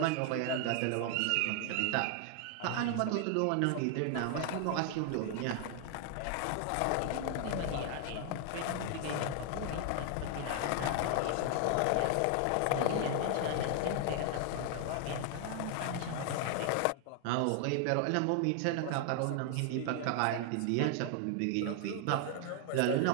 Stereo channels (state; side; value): different; both; correlation 0.00